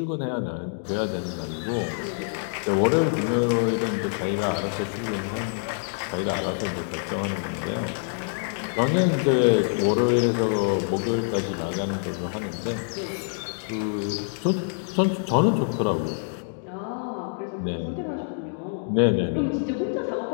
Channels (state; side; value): silent; right; digital silence